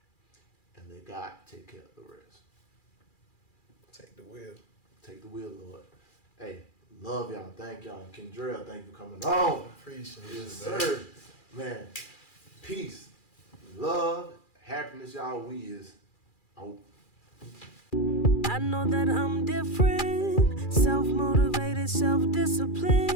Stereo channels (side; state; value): right; late; 2.4 ms